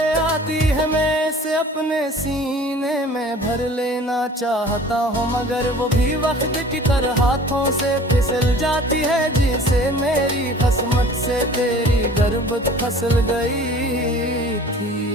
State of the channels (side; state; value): both; normal; correlation 0.47